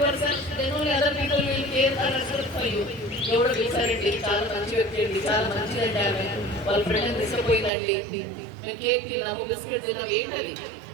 your self, then only other people will care and respect for you. ఎవడో పిలిచారండి, చాలా మంచి వ్యక్తి అండి, చాలా మంచిదండి, ఆమె వాళ్ళ ఫ్రెండ్ తీసుకుపోయిందండి, మేము కేక్ తిన్నాము, బిస్కెట్ తిన్నాము, ఏంటది?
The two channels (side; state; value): left; drops out; at 7.7 s